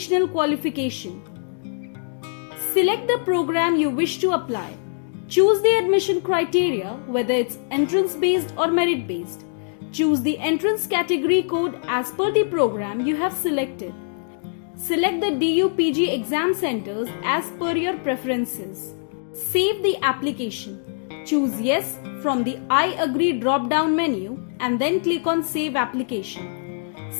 Qualification. Select the program you wish to apply. Choose the admission criteria, whether it's entrance-based or merit-based. Choose the entrance category code as per the program you have selected. Select the DU PG exam centers as per your preferences. Save the application. Choose Yes from the I agree drop-down menu and then click on Save Application.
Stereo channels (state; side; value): silent; right; digital silence